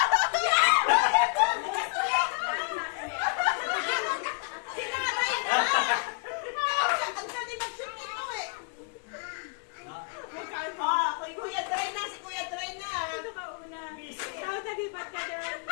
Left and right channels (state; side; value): quieter; right; 37.0 dB